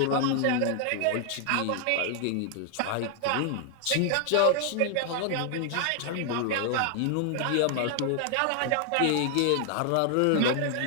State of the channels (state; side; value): different; both; correlation 0.00